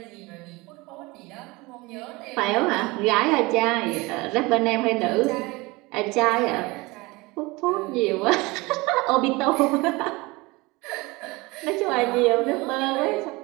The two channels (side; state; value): left; quieter; 23.4 dB